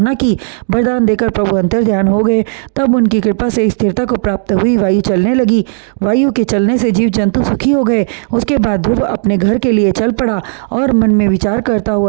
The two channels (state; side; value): silent; left; digital silence